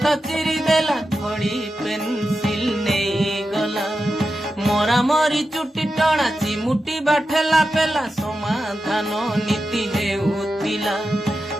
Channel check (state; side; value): normal; both; correlation 0.90